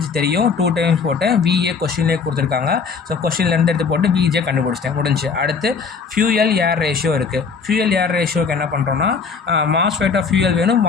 தெரியும். 2 டைம்ஸ் போட்டேன். விஏ கொஷின்லேயே கொடுத்துருக்காங்க. ஸோ கொஷின்லேருந்து எடுத்து போட்டு விஜே கண்டுபிடிச்சிட்டேன், முடிஞ்சு. அடுத்து ஃபியூயல் ஏர் ரேஷியோ இருக்குது. ஃபியூயல் ஏர் ரேஷியோக்கு என்ன பண்ணுறோன்னா மாஸ்ஃபெட் ஆஃப் ஃபியூயல் வேணும்,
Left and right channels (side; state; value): right; quieter; 5.4 dB